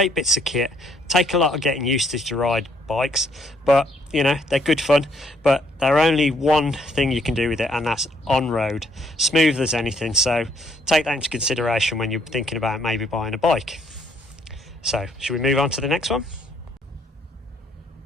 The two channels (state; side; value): normal; both; correlation 0.67